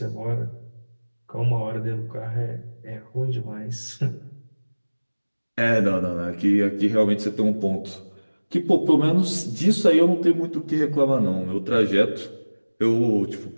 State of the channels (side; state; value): both; inverted; correlation -1.00